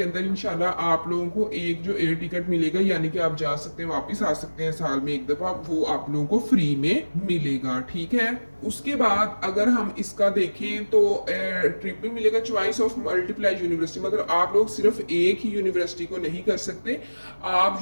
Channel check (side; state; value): both; inverted; correlation -1.00